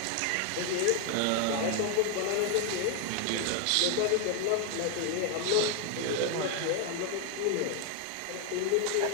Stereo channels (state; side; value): different; both; correlation 0.01